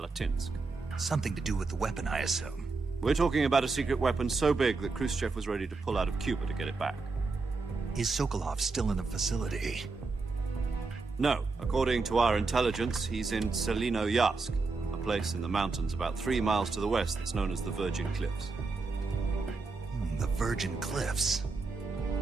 Something to do with the weapon, I assume. We're talking about a secret weapon so big that Khrushchev was ready to pull out of Cuba to get it back. Is Sokolov still in the facility? No. According to our intelligence, he's in Selinoyarsk, a place in the mountains about 3 miles to the west that's known as the Virgin Cliffs. The Virgin Cliffs.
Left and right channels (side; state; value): left; quieter; 4.0 dB